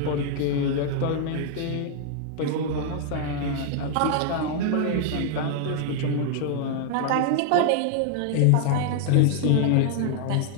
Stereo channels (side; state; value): both; different; correlation 0.00